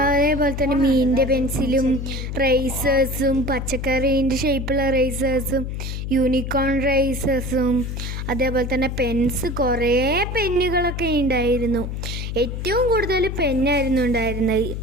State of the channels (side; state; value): left; noise; hum, 5 dB below the sound